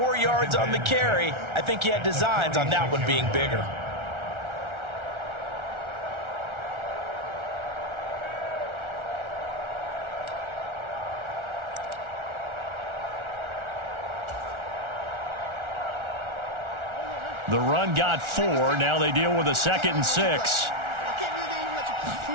yards on the carry. I think he had designs on that one being bigger. The run got 4. Now they deal with a 2nd and 6.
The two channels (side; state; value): left; late; 1.4 ms